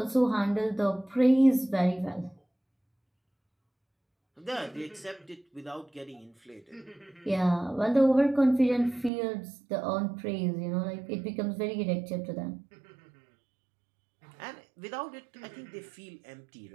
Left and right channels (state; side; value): drops out; left; at 9.1 s